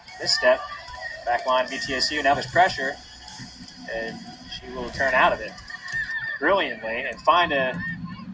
And this step, back line of ETSU, now there's pressure, and she will turn out of it brilliantly and find a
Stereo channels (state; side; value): identical; both; correlation 1.00